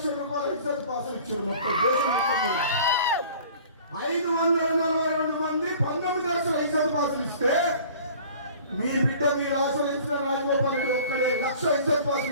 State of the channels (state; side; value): inverted; both; correlation -0.47